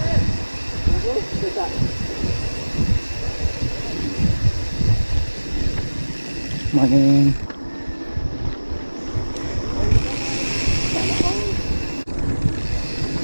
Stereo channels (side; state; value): both; inverted; correlation -1.00